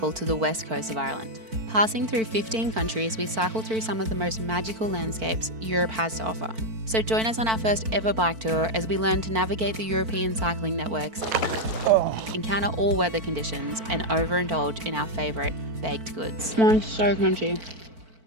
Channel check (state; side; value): late; left; 4.5 ms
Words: to the west coast of Ireland. Passing through 15 countries, we cycle through some of the most magical landscapes Europe has to offer. So join us on our first ever bike tour as we learn to navigate the European cycling networks, encounter all weather conditions, and overindulge in our favourite baked goods. Mine's so crunchy.